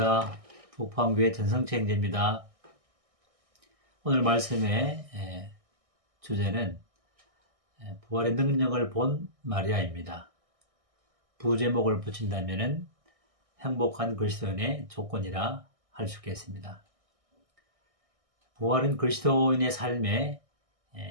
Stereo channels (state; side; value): late; left; 1.6 ms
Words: 북포항교회 전성채 형제입니다. 오늘 말씀의 주제는 부활의 능력을 본 마리아입니다. 부제목을 붙인다면 행복한 그리스도인의 조건이라 할 수 있겠습니다. 부활은 그리스도인의 삶의